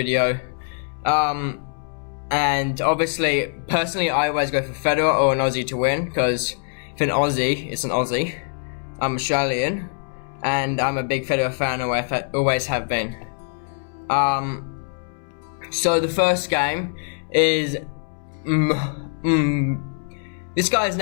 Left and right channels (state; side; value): silent; right; 63 dB below the other